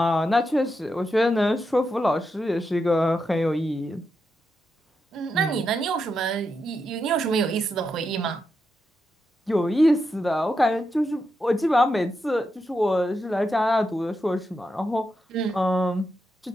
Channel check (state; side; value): normal; both; correlation 0.85